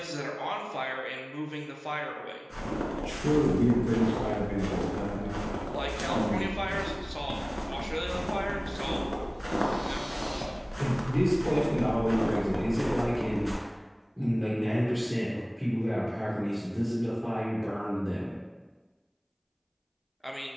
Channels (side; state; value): both; identical; correlation 1.00